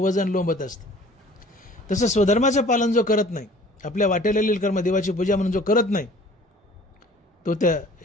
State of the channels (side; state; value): both; normal; correlation 0.50